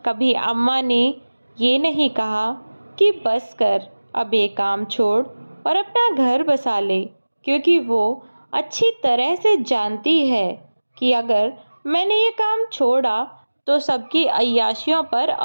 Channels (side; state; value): both; inverted; correlation -1.00